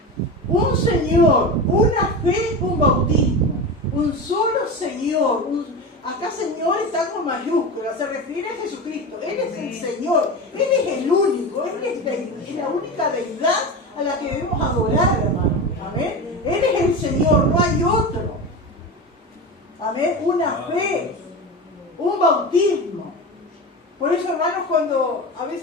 Un Señor, una fe, un bautismo. Un solo Señor. Acá Señor está con mayúsculas, se refiere a Jesucristo. Él es el Señor, Él es el único, Él es la única deidad a la que debemos adorar, hermano. Amén. Él es el Señor, no hay otro. Amén. Una fe, un bautismo. Por eso, hermanos, cuando a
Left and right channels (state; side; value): normal; both; correlation 0.25